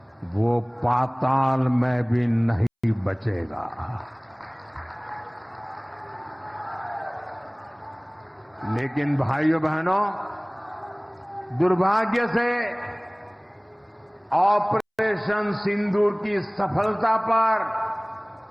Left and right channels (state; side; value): identical; both; correlation 1.00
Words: वो पाताल में भी नहीं बचेगा। लेकिन भाइयों बहनों, दुर्भाग्य से ऑपरेशन ऑपरेशन सिंदूर की सफलता पर